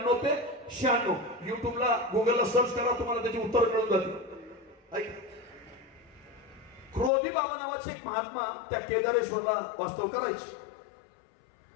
ते 96 युट्यूबला गुगलला सर्च करा, तुम्हाला त्याची उत्तर मिळून जातील. क्रोधी बाबा नावाचे एक महात्मा त्या केदारेश्वरला वास्तव करायचे.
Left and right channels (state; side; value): drops out; right; at 7.1 s